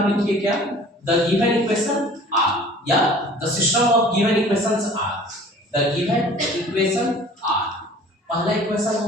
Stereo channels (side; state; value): both; normal; correlation 0.48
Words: लिखिए क्या, द गिवन इक्वेशन आर या the system of given equations are, the given equation are. पहला इक्वेशन हो